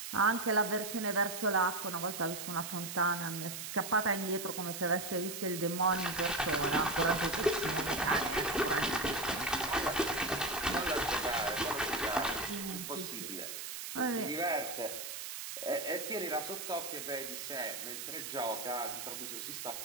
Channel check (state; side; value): noise; right; hiss, 7 dB below the sound